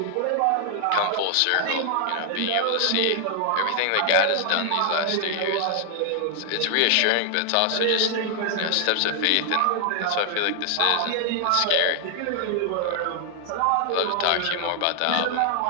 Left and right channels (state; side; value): different; both; correlation 0.00